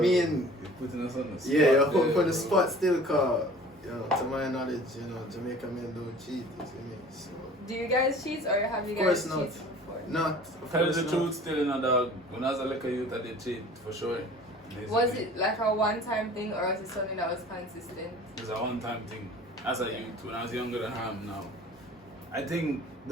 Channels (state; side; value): normal; both; correlation 0.46